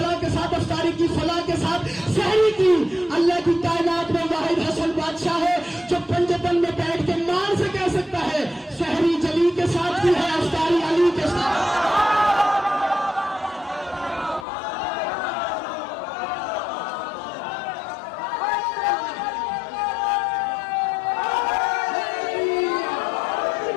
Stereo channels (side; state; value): right; drops out; at 14.5 s